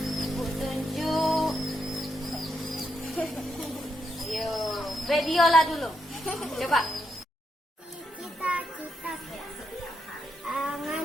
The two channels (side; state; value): both; normal; correlation 0.82